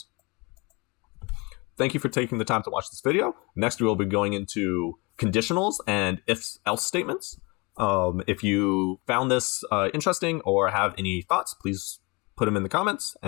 Thank you for taking the time to watch this video. Next, we will be going into conditionals and if-else statements. If you found this interesting or have any thoughts, please put them in the comments,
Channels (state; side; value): quieter; right; 27.6 dB